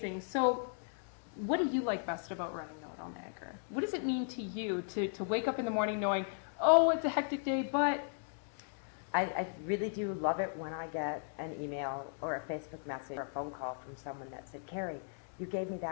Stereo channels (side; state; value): right; silent; digital silence